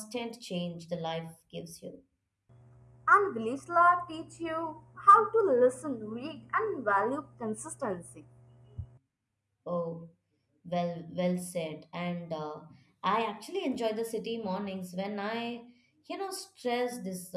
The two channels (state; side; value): identical; both; correlation 1.00